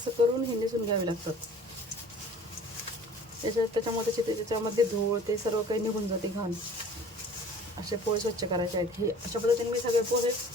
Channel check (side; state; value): both; normal; correlation 0.47